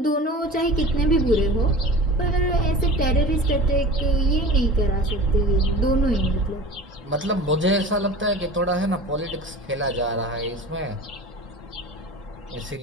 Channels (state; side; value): normal; both; correlation 0.36